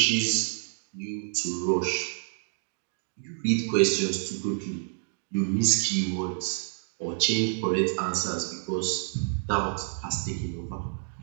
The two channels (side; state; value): left; silent; 59 dB below the other